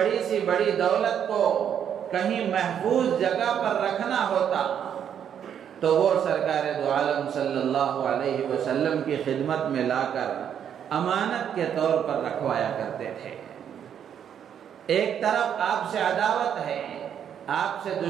سی بڑی دولت کو کہیں محفوظ جگہ پر رکھنا ہوتا تو وہ سرکار دو عالم صلی اللہ علیہ وسلم کی خدمت میں لا کر امانت کے طور پر رکھوایا کرتے تھے۔ ایک طرف آپ سے عداوت ہے، آپ سے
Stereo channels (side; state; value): left; quieter; 8.8 dB